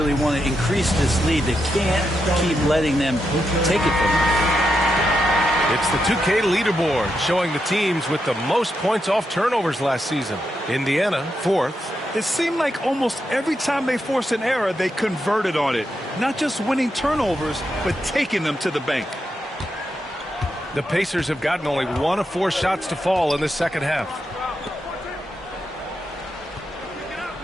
want to increase this lead. They can't keep letting them take it from them. It's the 2K leaderboard showing the teams with the most points off turnovers last season. Indiana, 4th. It seemed like almost every time they forced an error, they converted on it. Not just winning turnovers, but taking them to the bank. The Pacers have gotten only 1 of 4 shots to fall in the second half.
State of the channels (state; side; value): normal; both; correlation 0.84